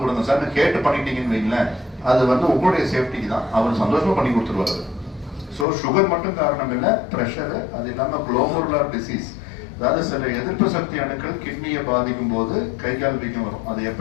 கொடுங்க சார் கேட்டு பண்ணிட்டீங்கன்னு வைங்களேன், அது வந்து உங்களுடைய சேஃப்டிக்கு தான். அவர் சந்தோஷமா பண்ணி கொடுத்துருவாரு. ஸோ சுகர் மட்டும் காரணம் இல்லை, ப்ரெஷரு, அது இல்லாமல் குளோமருலர் டிசீஸ், அதாவது சில எதிர்ப்பு சக்தி அணுக்கள் கிட்னியை பாதிக்கும் போது கை கால் வீக்கம் வரும். அது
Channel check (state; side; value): drops out; right; at 5.7 s